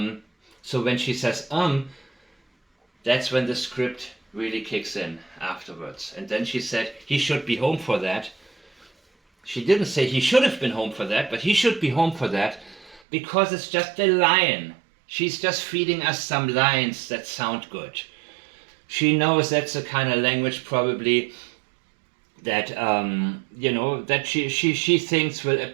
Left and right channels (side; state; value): left; drops out; at 13.0 s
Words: so when she says that's when the script really kicks in afterwards. And then she said he should be home for that. She didn't say he should have been home for that, but he should be home for that, because it's just a line. She's just feeding us some lines that sound good. She knows that's the kind of language probably that you know, that she thinks will